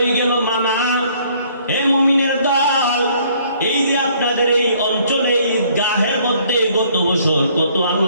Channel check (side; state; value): both; inverted; correlation -0.61